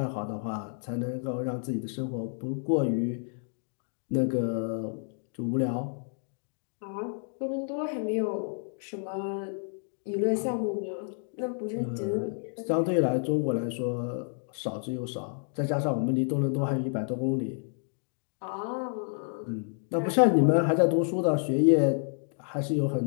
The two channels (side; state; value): right; silent; 57 dB below the other